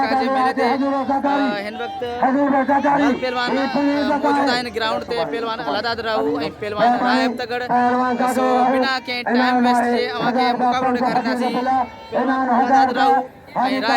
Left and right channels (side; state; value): both; identical; correlation 1.00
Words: जे मेले थे हिन वक्त पहलवान मौजूद है ग्राउंड ते पहलवान अलादाद राहू ए पहलवान रायब तगड़ सो बिना के टाइम वेस्ट जे अवा के मुकाबलो करनासी पहलवान अलादाद राहू ए